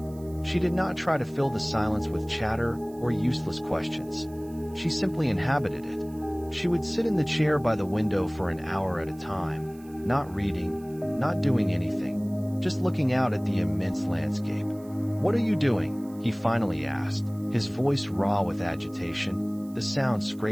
She did not try to fill the silence with chatter or useless questions. She simply inhabited it. She would sit in the chair by the window for an hour at a time, not reading, not doing anything, just looking out at the immense landscape. "What are you doing?" he finally asked, his voice raw with agitation, the sound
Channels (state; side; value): noise; right; hiss, 26 dB below the sound